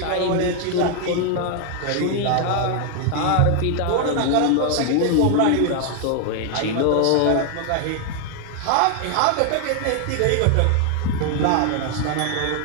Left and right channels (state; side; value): different; both; correlation 0.00